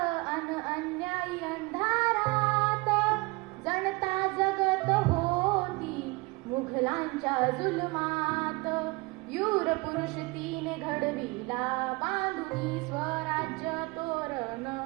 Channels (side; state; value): left; quieter; 25.2 dB